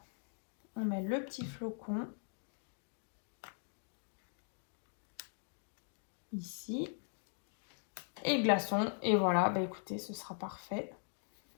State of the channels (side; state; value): right; silent; 51 dB below the other